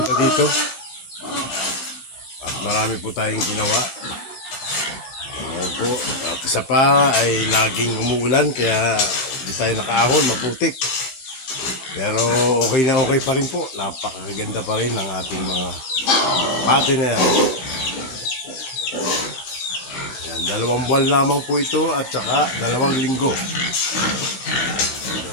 dito. At marami po tayong ginawa. At isa pa ay laging umuulan kaya hindi tayo nakaahon, maputik. Pero okay na okay pa rin po. Napakaganda pa rin ng ating mga partner. Dalawang buwan lamang po ito at saka 2 linggo. 2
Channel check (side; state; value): right; late; 16 ms